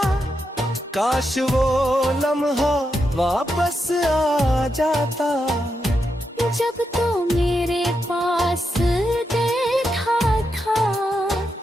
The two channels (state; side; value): normal; both; correlation 0.85